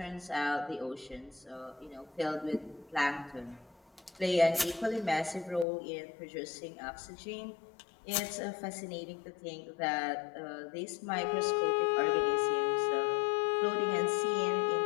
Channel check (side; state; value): right; drops out; at 5.7 s